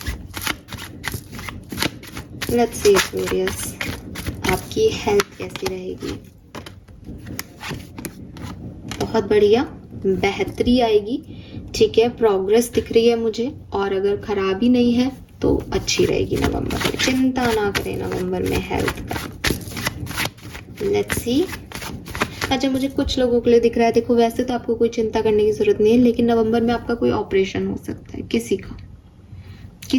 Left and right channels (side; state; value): both; identical; correlation 1.00